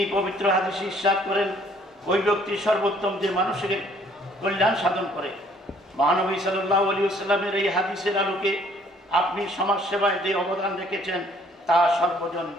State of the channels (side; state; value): both; normal; correlation 0.61